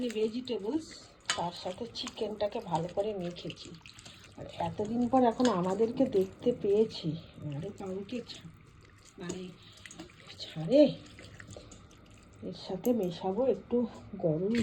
ভেজিটেবলস, তার সাথে চিকেনটাকে ভালো করে মেখেছি। আর এতদিন পর এখন আমাদেরকে দেখতে পেয়েছি, আরে কাউকে মানে ছাড়ে। এর সাথে মেশাবো একটু গরম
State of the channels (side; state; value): both; identical; correlation 1.00